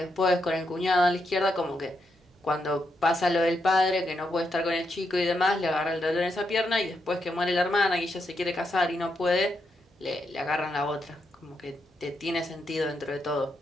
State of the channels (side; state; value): both; normal; correlation 0.81